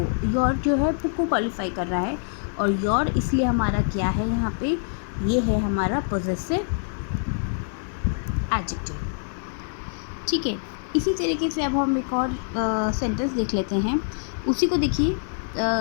योर जो है बुक को क्वालिफाई कर रहा है, और योर इसलिए हमारा क्या है यहाँ पे, ये है हमारा पॉजेसिव एडजेक्टिव, ठीक है। इसी तरीके से अब हम एक और सेंटेंस देख लेते हैं, उसी को देखिए,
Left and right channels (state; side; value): silent; right; 62 dB below the other